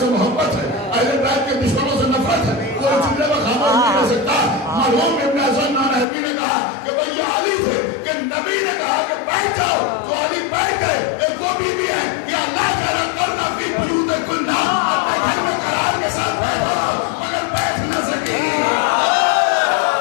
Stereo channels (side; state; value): right; drops out; at 6.1 s